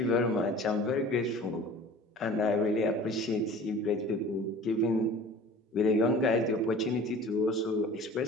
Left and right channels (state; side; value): normal; both; correlation 0.43